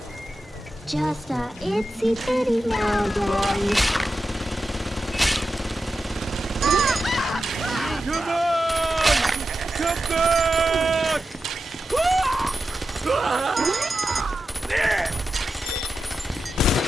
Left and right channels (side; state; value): both; normal; correlation 0.91